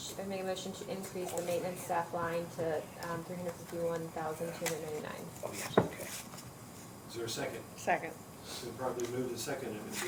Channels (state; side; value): identical; both; correlation 1.00